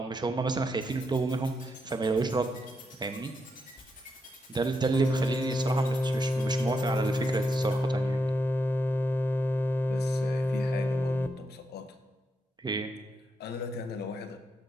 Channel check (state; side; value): normal; both; correlation 0.83